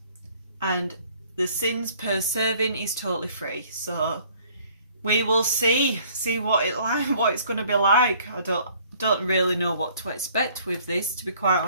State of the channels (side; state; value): both; inverted; correlation -0.58